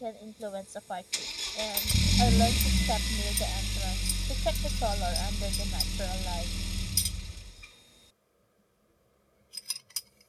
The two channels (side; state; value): both; identical; correlation 1.00